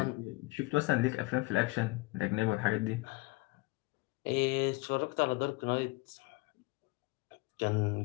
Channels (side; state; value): right; quieter; 23.7 dB